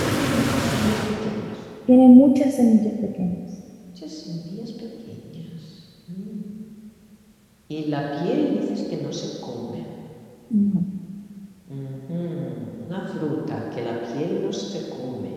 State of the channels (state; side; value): identical; both; correlation 1.00